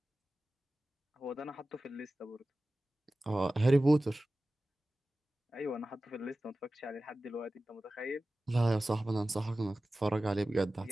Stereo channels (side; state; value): both; normal; correlation 0.96